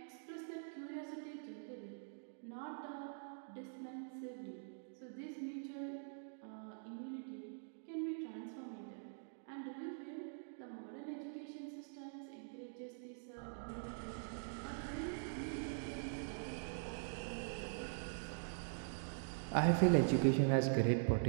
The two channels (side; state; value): left; silent; digital silence